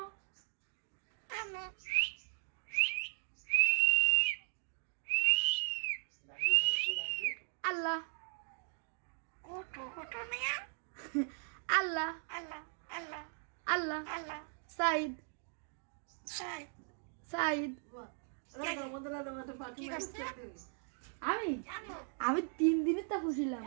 আমু আল্লাহ কুটু কুটু মিয়া আল্লাহ আল্লাহ আল্লাহ আল্লাহ আল্লাহ সাইদ সাই সাইদ কি করছে আমি আমু আমি 3 দিনের তা খুশিলাম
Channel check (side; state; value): left; silent; 52 dB below the other